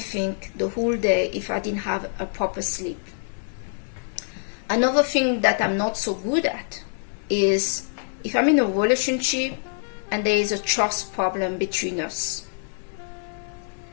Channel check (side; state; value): right; silent; digital silence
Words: the whole day if I didn't have a proper sleep. Another thing that I'm not so good at is if I'm in a relationship and there is a trust problem between us.